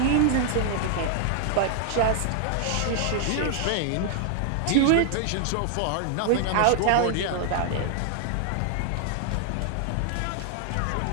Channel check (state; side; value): different; both; correlation 0.00